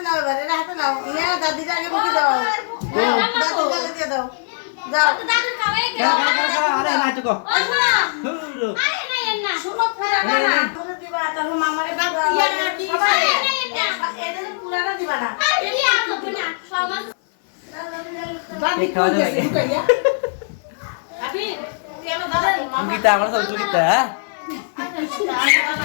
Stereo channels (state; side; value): silent; right; 57 dB below the other